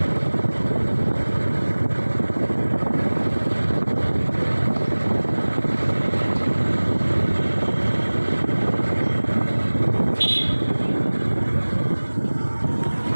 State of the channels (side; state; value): both; inverted; correlation -1.00